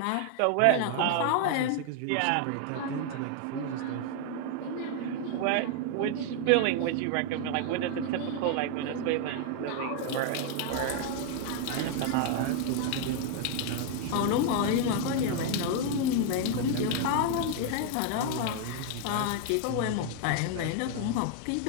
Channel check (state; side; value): different; both; correlation 0.00